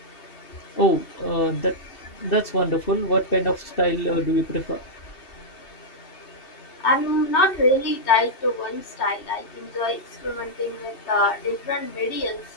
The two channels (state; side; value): late; right; 2.7 ms